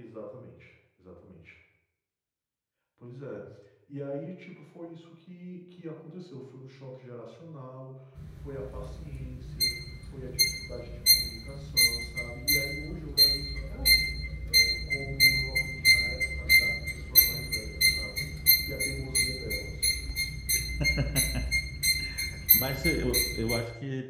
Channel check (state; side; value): identical; both; correlation 1.00